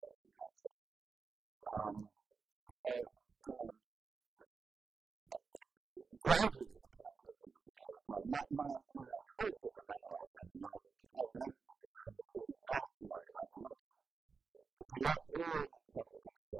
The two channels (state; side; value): quieter; left; 4.9 dB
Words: that phrase. Gradually the politics of it became apparent. My hope in the memoir had been, and my determination had been from the beginning, not to write about politics, but to let all the subsequent